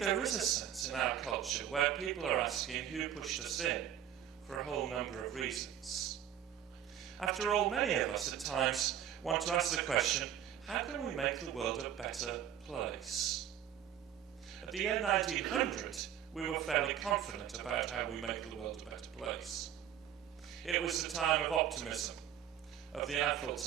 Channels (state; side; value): quieter; left; 10.1 dB